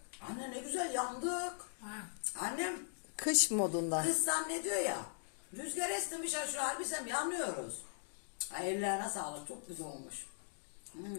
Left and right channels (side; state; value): right; silent; digital silence